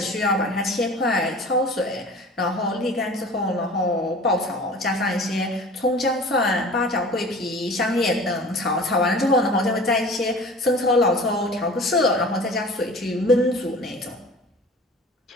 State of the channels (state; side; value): normal; both; correlation 0.41